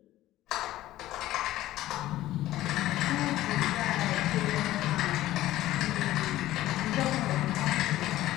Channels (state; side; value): quieter; right; 15.1 dB